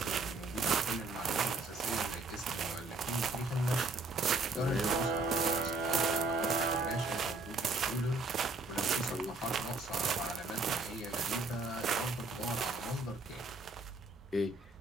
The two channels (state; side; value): quieter; left; 3.5 dB